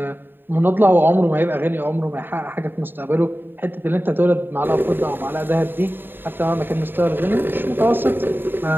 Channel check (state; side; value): late; left; 0.096 ms